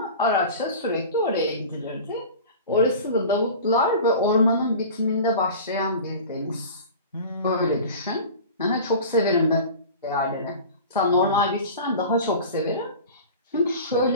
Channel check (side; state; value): both; inverted; correlation -0.37